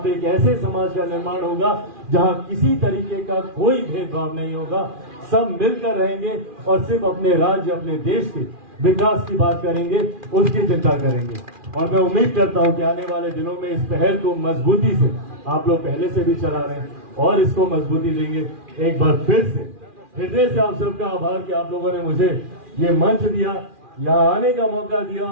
एक ऐसे समाज का निर्माण होगा जहां किसी तरीके का कोई भेदभाव नहीं होगा। सब मिलकर रहेंगे और सिर्फ अपने राज्य, अपने देश के विकास की बात करेंगे, उसकी चिंता करेंगे। और मैं उम्मीद करता हूं कि आने वाले दिनों में इस पहल को मजबूती से, आप लोग पहले से भी चला रहे हैं और इसको मजबूती देंगे। एक बार फिर से हृदय से आप सबका आभार कि आप लोगों ने मुझे ये मंच दिया, यहाँ आने का मौका दिया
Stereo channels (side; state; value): left; late; 2.4 ms